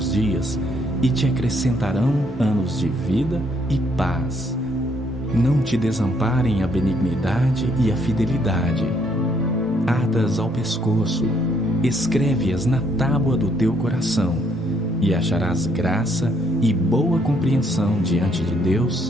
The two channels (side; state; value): both; normal; correlation 0.70